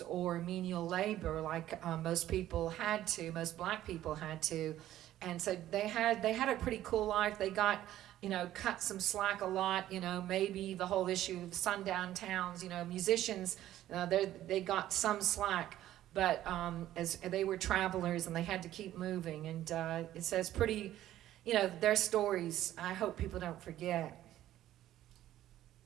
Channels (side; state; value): left; quieter; 13.3 dB